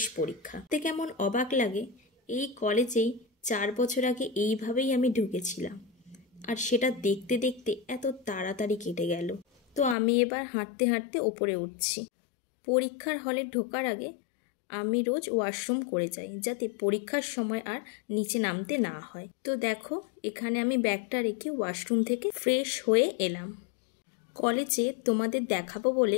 পরীক্ষা। তো কেমন অবাক লাগে, এই কলেজেই 4 বছর আগে এইভাবেই আমি ঢুকেছিলাম, আর সেটা দেখতে দেখতে এত তাড়াতাড়ি কেটে গেল। তো আমি এবার হাঁটতে হাঁটতে ওপরে উঠছি। পরীক্ষার হলে ঢোকার আগে আমি রোজ ওয়াশরুম করে যাই, যাতে পরীক্ষার সময় আর নিচে নামতে না হয়। তো দেখো এখানে আমি ব্যাগটা রেখে ওয়াশরুম থেকে ফ্রেশ হয়ে এলাম। কলেজে তোমাদের দেখাবো বলে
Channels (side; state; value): right; drops out; at 10.0 s